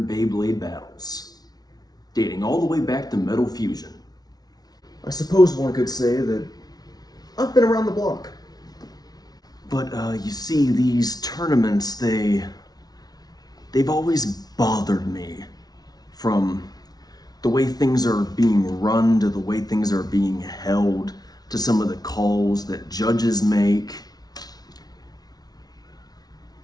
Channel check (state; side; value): late; right; 0.19 ms